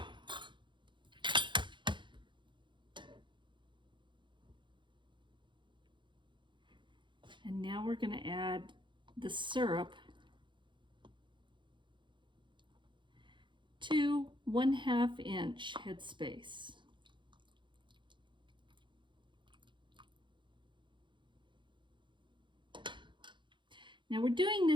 And now we're going to add the syrup to 1/2 inch headspace. Now we're doing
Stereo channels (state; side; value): late; left; 0.23 ms